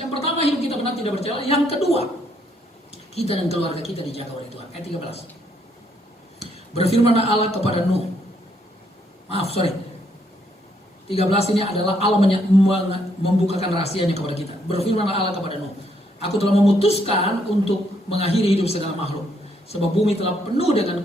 yang pertama hidup kita benar tidak bercela. Yang kedua, kita dan keluarga kita dijaga oleh Tuhan. Ayat 13. Berfirmanlah Allah kepada Nuh. 13 ini adalah Allah membukakan rahasianya kepada kita. Berfirmanlah Allah kepada Nuh. Aku telah memutuskan untuk mengakhiri hidup segala makhluk. Sebab bumi telah penuh dengan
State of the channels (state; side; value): normal; both; correlation 0.72